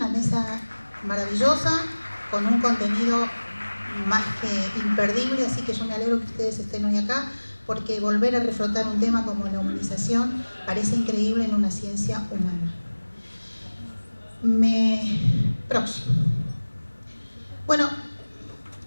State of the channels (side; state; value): both; inverted; correlation -1.00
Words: mesa maravillosa, con un contenido más que imperdible, así que yo me alegro que ustedes estén hoy acá, porque volver a reflotar un tema como la humanización parece increíble en una ciencia humana. Próximo. Bueno,